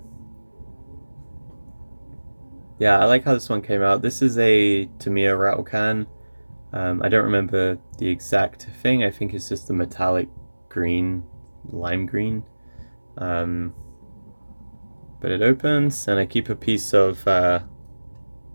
I like how this one came out. This is a Tamiya rattle can. I don't remember the exact thing. I think it's just the metallic green, lime green. But it opens, and I keep a piece of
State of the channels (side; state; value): both; inverted; correlation -1.00